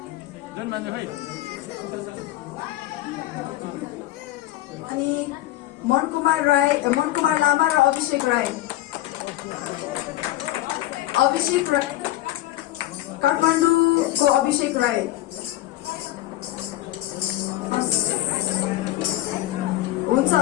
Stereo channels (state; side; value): quieter; right; 15.6 dB